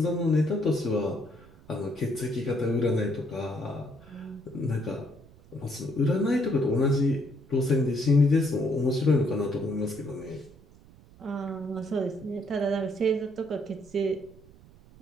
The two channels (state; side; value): noise; right; rumble, 24 dB below the sound